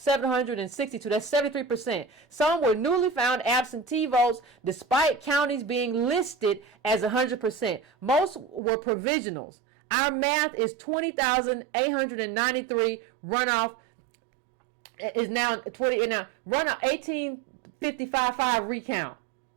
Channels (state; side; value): drops out; left; at 8.6 s